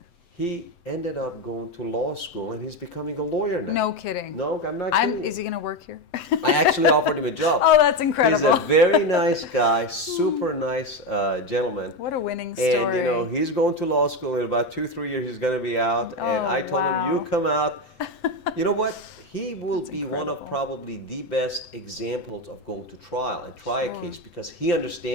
He ended up going to law school, and he's becoming a lawyer now. No kidding. No, I'm not kidding. Is he going to work here? I actually offered him a job. Oh, that's incredible. He's a very nice guy, super nice gentleman. What a winning story. And he's going to law school in about 2-3 years. He's going to be out. And I told him, you come out. You know what? He will be one of probably the best examples of going to trial and try a case because he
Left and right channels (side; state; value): right; late; 7.8 ms